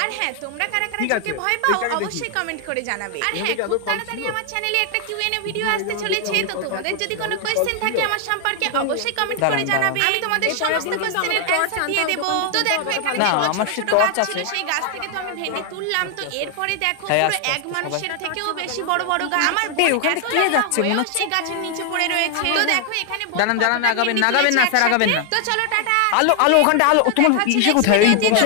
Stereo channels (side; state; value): both; different; correlation 0.00